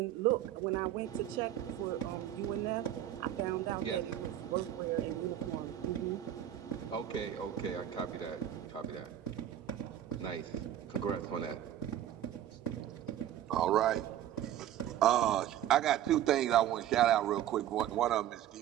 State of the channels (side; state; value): left; quieter; 11.6 dB